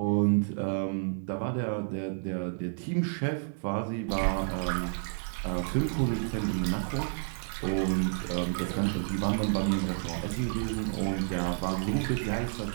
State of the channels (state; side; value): silent; left; digital silence